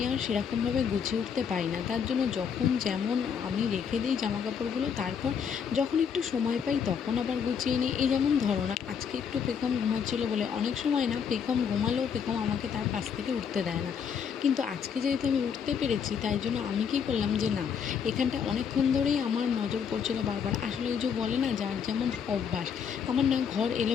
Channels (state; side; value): quieter; right; 7.1 dB